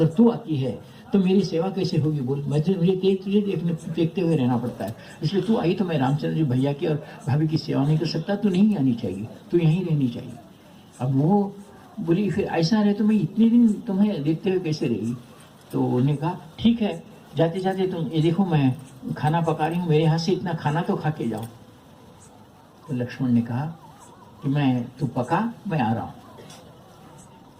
तू आती है तो मेरी सेवा कैसे होगी? बोल, मुझे तुझे देखते हुए रहना पड़ता है, इसलिए तू आई तो मैं रामचंद्र जी भैया की और भाभी की सेवा नहीं कर सकता, तू नहीं आनी चाहिए, तू यहीं रहनी चाहिए। अब वो बोली फिर ऐसा रहे तो मैं इतने दिन तुम्हें देखते हुए कैसे रहेगी? तो उन्हें कहा ठीक है, जाते जाते तुम ये देखो मैं खाना पका रही हूँ, मेरे हाथ से इतना खाना तो खा के जाओ। तो लक्ष्मण ने कहा कि तू पका, मैं आ रहा हूँ।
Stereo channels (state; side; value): identical; both; correlation 1.00